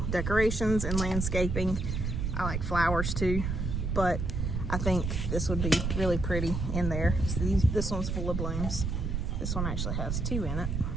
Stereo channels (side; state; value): right; noise; rumble, 1 dB below the sound